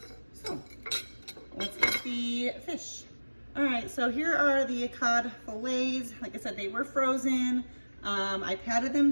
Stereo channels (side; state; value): both; inverted; correlation -1.00